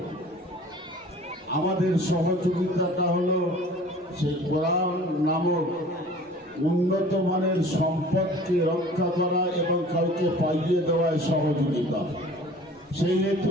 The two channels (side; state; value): both; normal; correlation 0.46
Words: আমাদের সহযোগিতাটা হলো সেই কোরআন নামক উন্নত মানের সম্পদকে রক্ষা করা এবং কাউকে পাইয়ে দেওয়ায় সহযোগিতা। সেই হেতু